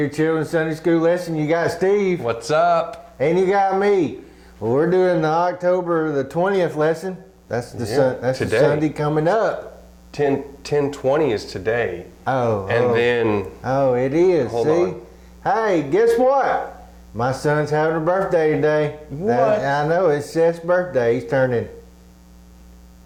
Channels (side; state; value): both; identical; correlation 1.00